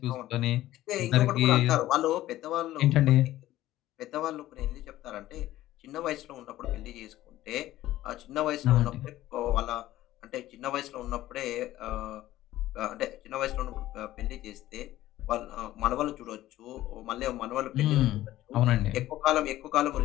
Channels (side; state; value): right; quieter; 14.9 dB